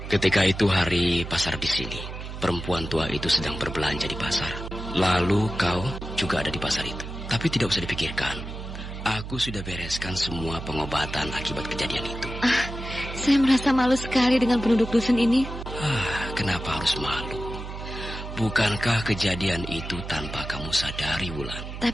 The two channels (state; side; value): noise; right; hum, 9 dB below the sound